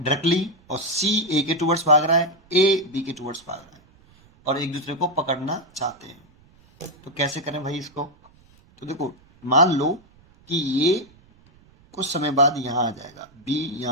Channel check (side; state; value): right; noise; rumble, 29 dB below the sound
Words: और सी ए के टूवर्ड्स भाग रहा है, ए बी के टूवर्ड्स भाग रहा है और एक दूसरे को पकड़ना चाहते हैं। तो कैसे करें भाई इसको? तो देखो मान लो कि ये कुछ समय बाद यहाँ आ जाएगा, बी